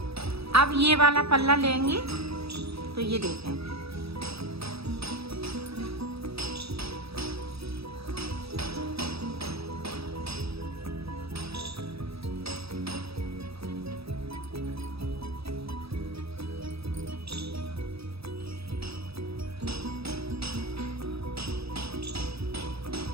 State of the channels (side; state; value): left; late; 0.77 ms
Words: अब ये वाला पल्ला लेंगे, तो ये देखें,